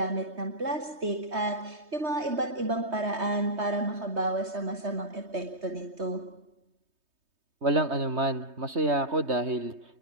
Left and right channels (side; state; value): left; late; 3.2 ms